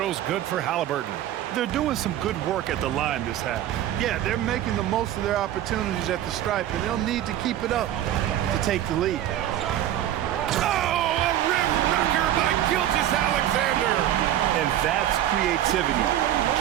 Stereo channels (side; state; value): left; quieter; 12.1 dB